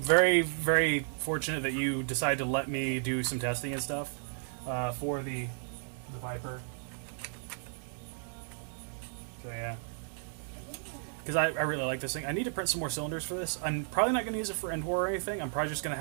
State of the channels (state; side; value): silent; left; 56 dB below the other